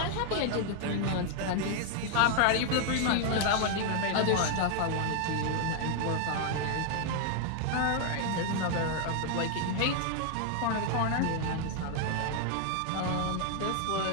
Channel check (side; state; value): both; different; correlation 0.00